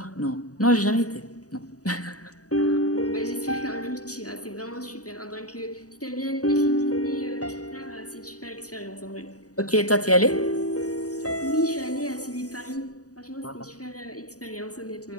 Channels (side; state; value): right; late; 0.67 ms